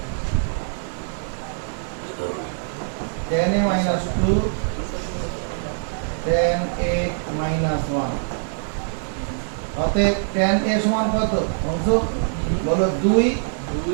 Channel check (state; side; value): silent; left; 63 dB below the other